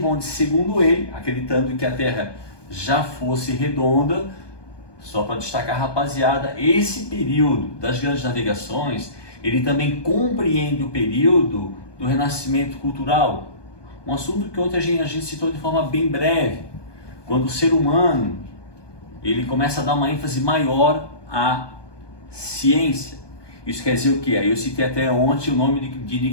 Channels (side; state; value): right; late; 1.2 ms